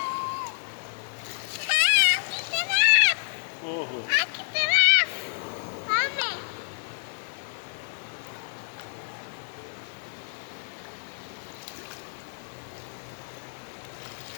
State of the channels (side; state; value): right; silent; 59 dB below the other